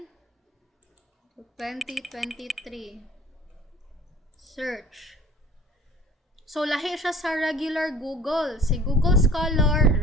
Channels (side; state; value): both; normal; correlation 0.48